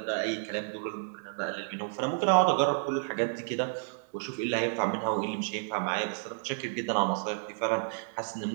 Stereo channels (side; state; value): left; silent; digital silence